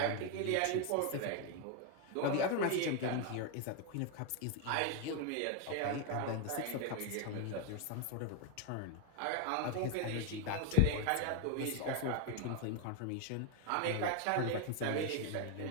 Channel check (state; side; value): different; both; correlation 0.01